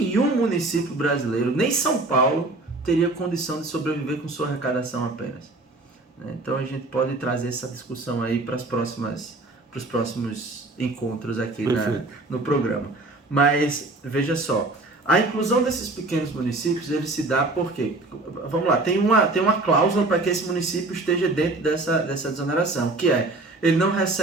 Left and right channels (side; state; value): left; quieter; 3.0 dB